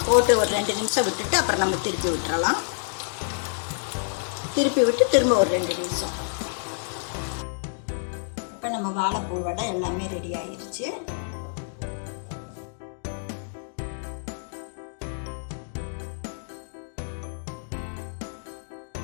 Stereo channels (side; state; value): right; silent; digital silence